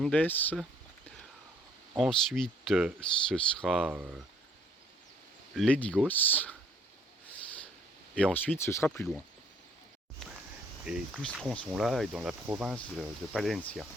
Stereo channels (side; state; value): both; normal; correlation 0.62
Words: Ensuite, ce sera Ledigos. Et ensuite, ce sera plus loin. Et tout ce tronçon-là est dans la province de Palencia.